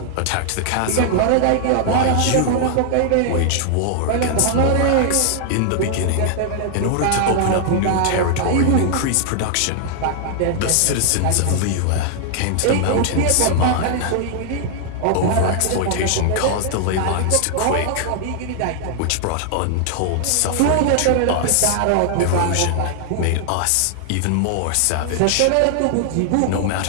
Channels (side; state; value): both; different; correlation 0.00